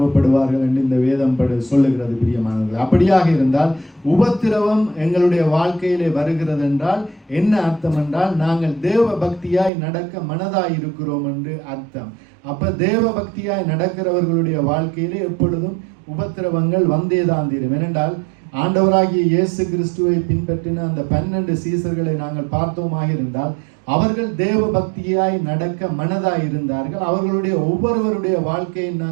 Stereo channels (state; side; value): drops out; left; at 9.7 s